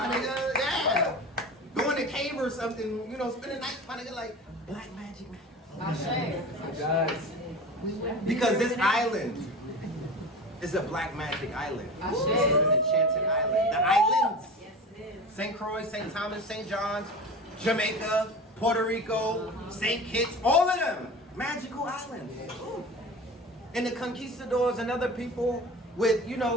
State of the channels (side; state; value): both; normal; correlation 0.33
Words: nigga. Yeah. Go in the cave or something, you know, spend the night, my nigga, like, black magic matters. Because this island is a black magic island. It's an enchanted island. The islands. St. Croix, St. Thomas, St. John's, Jamaica, Puerto Rico, St. Kitts, all of them. Magical islands. And the conquistadors and other people with, you